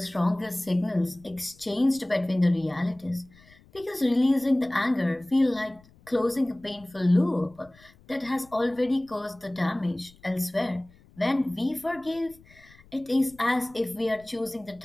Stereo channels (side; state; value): left; noise; rumble, 26 dB below the sound